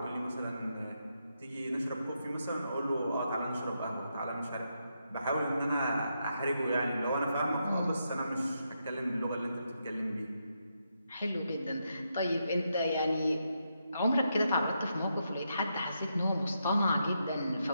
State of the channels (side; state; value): both; inverted; correlation -0.82